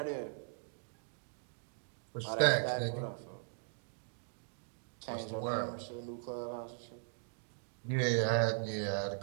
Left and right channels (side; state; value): left; silent; digital silence